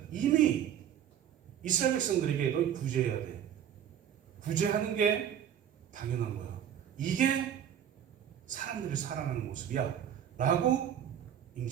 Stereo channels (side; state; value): left; quieter; 9.6 dB